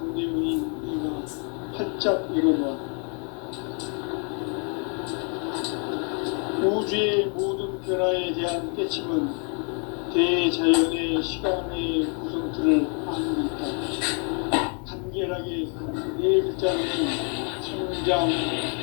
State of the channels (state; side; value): quieter; right; 39.3 dB